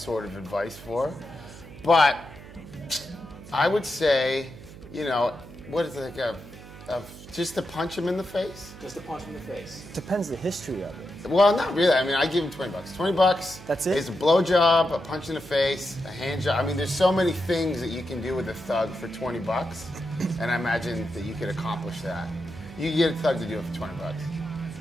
of advice for. But I would say, you know, what is it, like just to punch him in the face? Just to punch him in the face. Depends the history of it. Well, not really. I mean, I give him $20. $20. That's it? It's a blowjob, a punch in the face, a hand job. I mean, there's so many things that you can do with a thug for $20, and I imagine that you could accomplish that. You can get a thug to do it for $20.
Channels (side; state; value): right; noise; hum, 16 dB below the sound